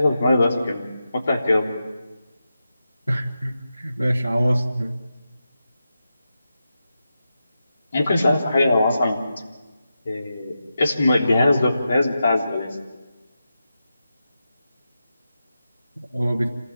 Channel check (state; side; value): inverted; both; correlation -0.89